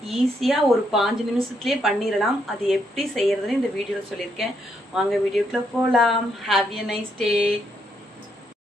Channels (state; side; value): normal; both; correlation 0.76